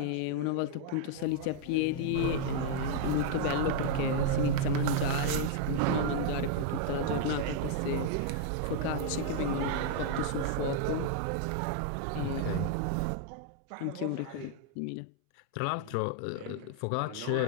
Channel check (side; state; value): both; different; correlation -0.01